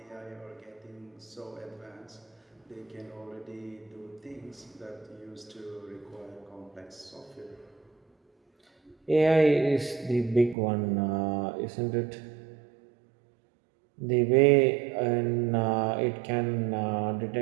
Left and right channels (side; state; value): left; drops out; at 10.6 s